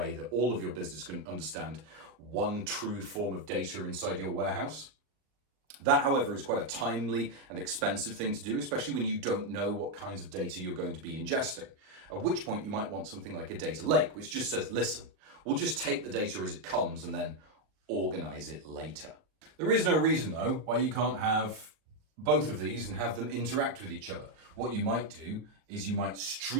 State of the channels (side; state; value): left; late; 38 ms